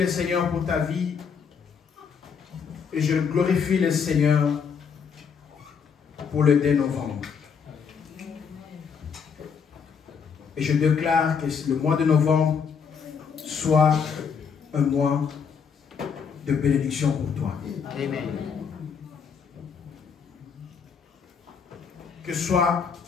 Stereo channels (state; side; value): quieter; right; 6.5 dB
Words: Seigneur pour ta vie. Et je glorifie le Seigneur pour le 2 novembre. Et je déclare que le mois de novembre soit un mois de bénédiction pour toi. Amen. Que soit